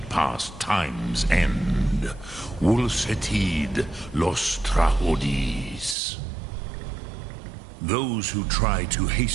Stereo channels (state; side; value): drops out; left; at 6.0 s